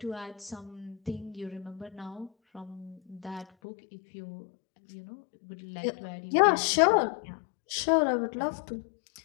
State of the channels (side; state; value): right; drops out; at 3.5 s